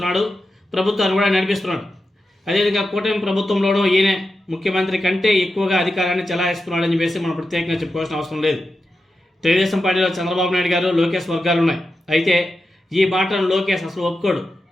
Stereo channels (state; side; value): normal; both; correlation 0.90